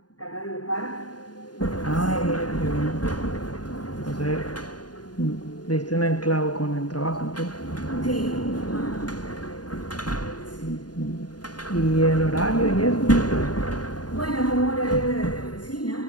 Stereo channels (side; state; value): right; late; 0.70 ms